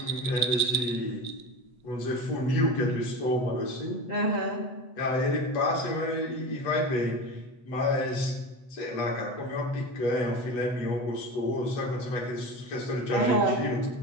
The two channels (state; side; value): late; right; 8.0 ms